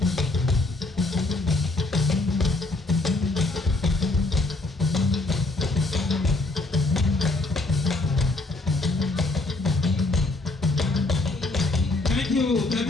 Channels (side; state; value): right; quieter; 3.0 dB